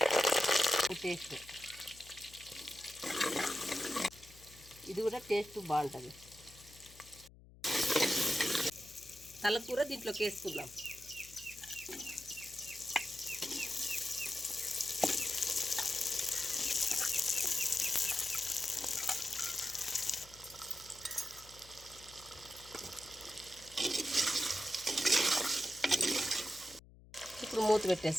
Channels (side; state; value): left; noise; hum, 22 dB below the sound